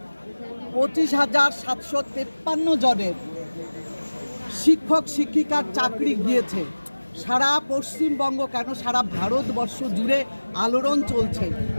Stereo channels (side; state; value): both; inverted; correlation -1.00